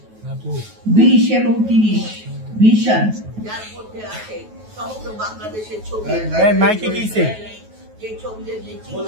20 এবং 30 ভিশন, যার মধ্যে আছে সমগ্র বাংলাদেশের ছবি। যে ছবিদের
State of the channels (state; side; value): late; left; 9.3 ms